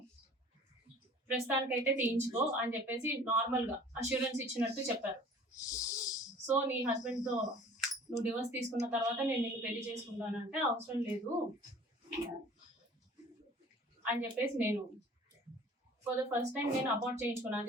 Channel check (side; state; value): both; normal; correlation 0.48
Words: ప్రస్తుతానికైతే తీయించుకో అని చెప్పేసి నార్మల్ గా అష్యూరెన్స్ ఇచ్చినట్టు చెప్పారు. సో నీ హస్బెండ్ తో నువ్వు డివోర్స్ తీసుకున్న తర్వాత నేను నిన్ను పెళ్లి చేసుకుంటానంటే, అవసరం లేదు అని చెప్పేసి నేను ఫర్ ద ఫస్ట్ టైం నేను అబార్ట్ చేయించుకున్నాను.